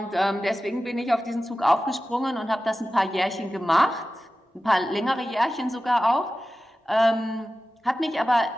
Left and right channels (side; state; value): both; normal; correlation 0.95